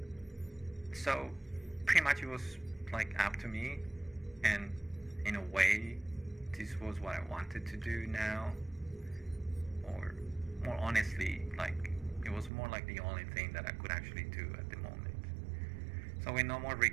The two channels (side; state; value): left; drops out; at 12.5 s